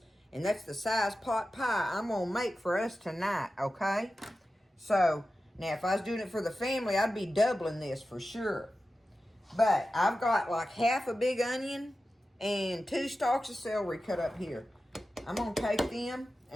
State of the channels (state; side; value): normal; both; correlation 0.93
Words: And that's the size pot pie I'm going to make for us tonight, okay? So, now if I was doing it for the family, I'd be doubling this for sure. But I've got like half a big onion and 2 stalks of celery cut up here. I'm going to take them